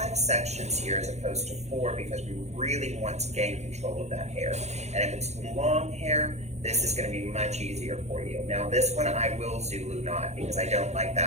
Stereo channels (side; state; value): left; late; 0.32 ms